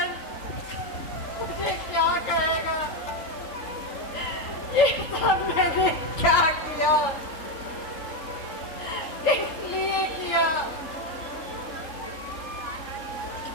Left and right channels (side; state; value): right; late; 3.8 ms